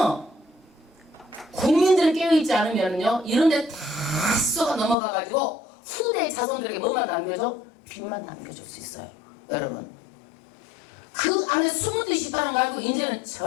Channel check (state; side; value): drops out; right; at 5.0 s